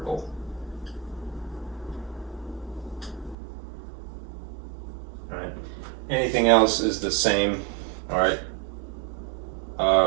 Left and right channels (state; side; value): drops out; left; at 3.4 s